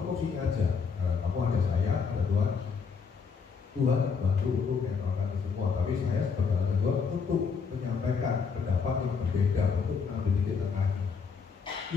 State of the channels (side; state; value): right; quieter; 5.7 dB